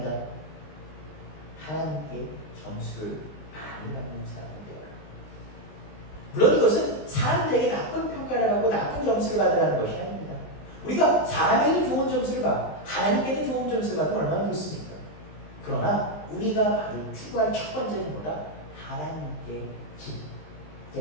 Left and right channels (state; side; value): late; right; 20 ms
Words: 하나님께 점수를 많이 받는 사람이 되어라. 물론 이것은 사람들에게 나쁜 평가를 받고 나쁜 점수를 받으라는 것이 아닙니다. 우리가 사람에게 좋은 점수를 받고 하나님께도 좋은 점수를 받으면 얼마나 좋습니까? 그러나 우리가 바로 추구할 첫 번째는 뭐다? 하나님께